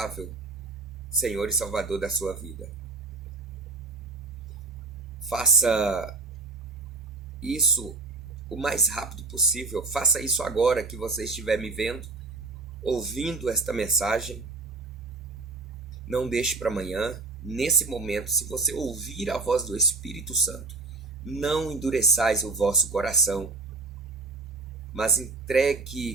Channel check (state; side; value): quieter; left; 3.8 dB